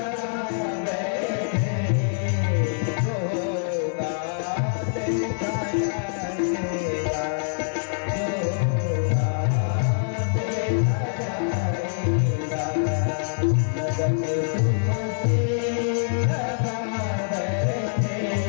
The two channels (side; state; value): right; silent; digital silence